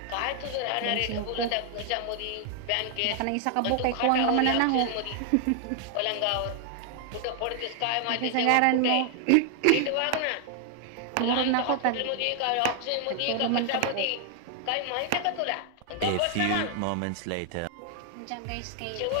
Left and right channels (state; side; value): different; both; correlation 0.00